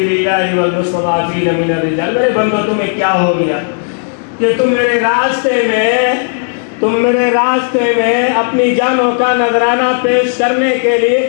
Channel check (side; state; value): right; silent; 68 dB below the other